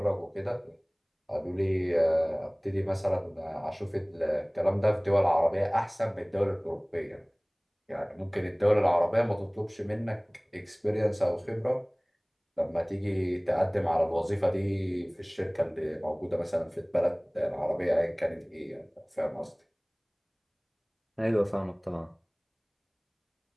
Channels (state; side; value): identical; both; correlation 1.00